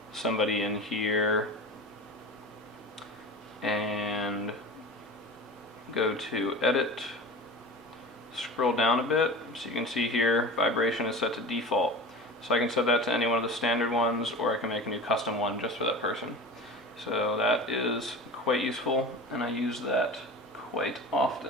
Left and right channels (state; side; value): normal; both; correlation 0.33